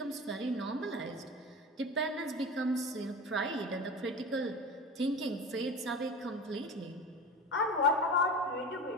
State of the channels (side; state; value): both; normal; correlation 0.31